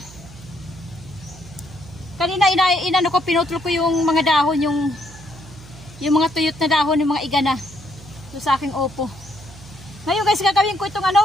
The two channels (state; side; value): noise; right; hum, 19 dB below the sound